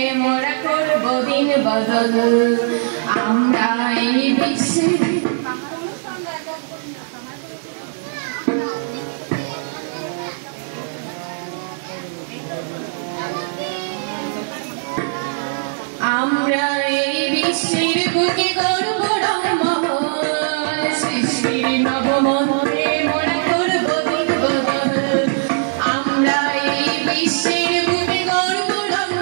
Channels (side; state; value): left; silent; digital silence